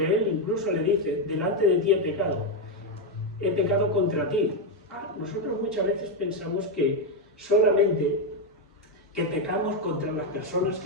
Él incluso le dice, delante de ti he pecado contra ti. Nosotros muchas veces pensamos que solamente que pecamos contra las personas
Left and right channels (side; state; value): both; normal; correlation 0.05